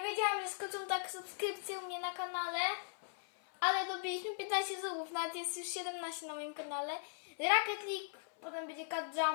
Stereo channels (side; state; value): right; silent; 52 dB below the other